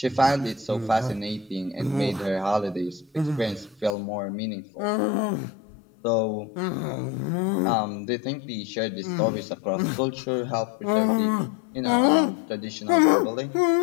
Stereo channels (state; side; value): drops out; right; at 4.0 s